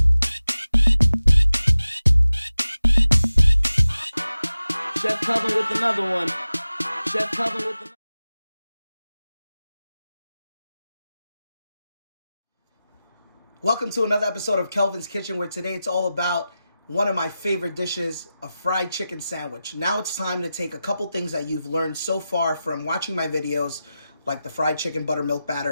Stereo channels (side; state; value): both; inverted; correlation -0.94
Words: Chef Kelvin with another one. Chef Kelvin with another. Welcome to another episode of Kelvin's Kitchen, where today it's all about one of my favorite dishes, a fried chicken sandwich. Now it's time to take a couple things that you've learned so far from watching my videos, like the fried chicken buttermilk